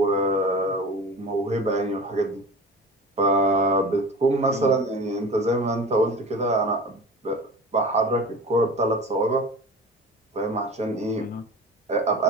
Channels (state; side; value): normal; both; correlation 0.35